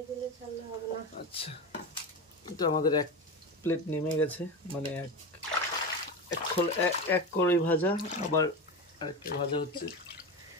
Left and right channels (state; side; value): normal; both; correlation 0.22